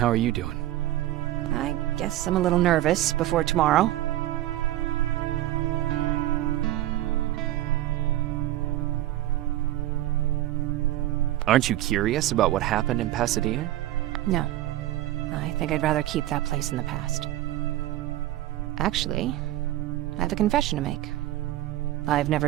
are you doing? I guess I'm a little nervous before tomorrow. Aren't you curious about what happened in Pasadena? No. I think I'd rather keep that place in the past. Actually, I have a confession to make. I've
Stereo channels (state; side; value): quieter; left; 14.8 dB